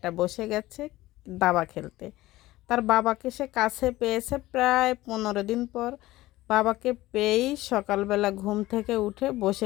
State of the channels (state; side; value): quieter; right; 17.3 dB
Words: বসে গেছে দাবা খেলতে। তার বাবাকে সে কাছে পেয়েছে প্রায় 15 দিন পর। বাবাকে পেয়েই সকালবেলা ঘুম থেকে উঠে